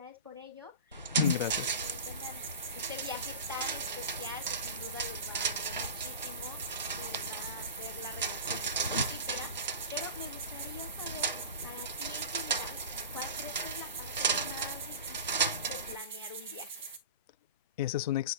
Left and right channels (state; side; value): inverted; both; correlation -0.31